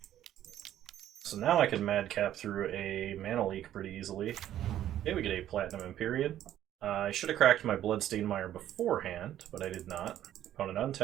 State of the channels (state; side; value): quieter; left; 11.9 dB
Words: So now I can Madcap through a Mana Leak pretty easily. Okay, we get a Platinum Empyrean. I should have cracked my Bloodstained Mire beforehand, but I did not. Opponent